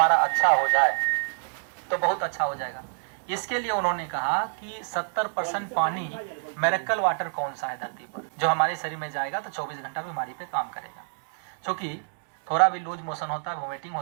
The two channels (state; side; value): silent; left; digital silence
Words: अच्छा हो जाए तो बहुत अच्छा हो जाएगा। इसके लिए उन्होंने कहा कि 70% पानी मिरेकल वाटर कौन सा है धरती पर, जो हमारे शरीर में जाएगा तो 24 घंटा बीमारी पे काम करेगा। क्योंकि थोड़ा भी लूज मोशन होता है, वोमिटिंग